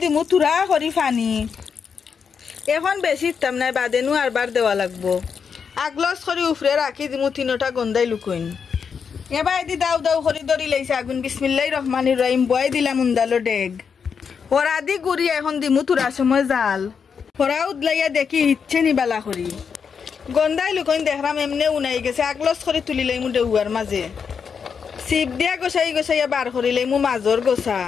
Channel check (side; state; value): right; quieter; 6.4 dB